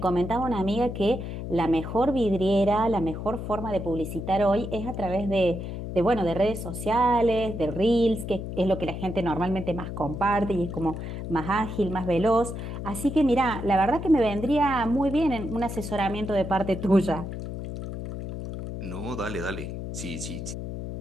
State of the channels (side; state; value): left; noise; hum, 7 dB below the sound